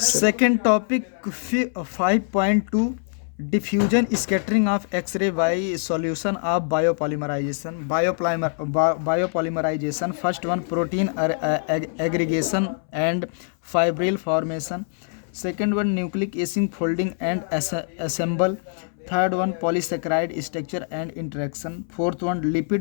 topic, 5.2, diffusion scattering of X-ray by solution of biopolymerization. Biopolymerization. First one, protein aggregation and fibril formation. Second one, nucleic acid folding and assemble. Third one, polysaccharide structure and interaction. Fourth one,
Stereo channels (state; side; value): silent; right; 63 dB below the other